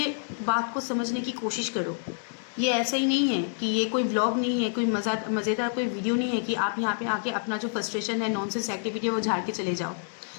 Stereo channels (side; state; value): right; silent; digital silence